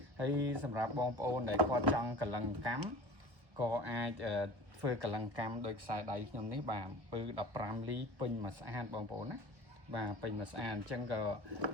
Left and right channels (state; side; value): late; left; 1.2 ms